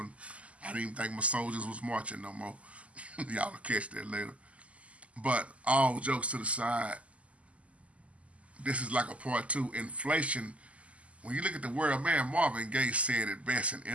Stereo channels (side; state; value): left; late; 0.065 ms